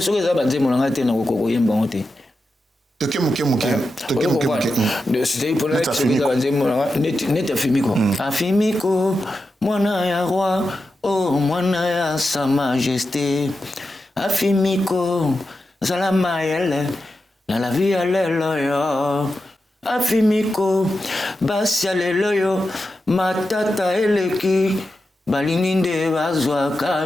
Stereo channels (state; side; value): normal; both; correlation 0.90